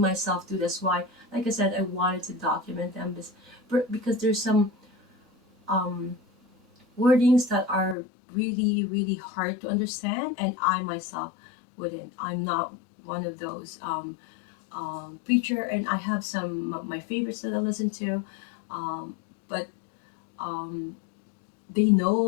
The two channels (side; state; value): right; drops out; at 8.0 s